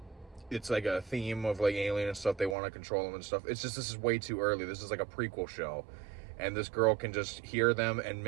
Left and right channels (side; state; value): left; drops out; at 2.6 s